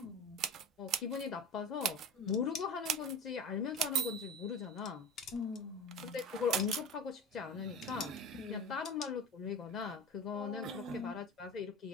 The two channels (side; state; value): both; normal; correlation 0.32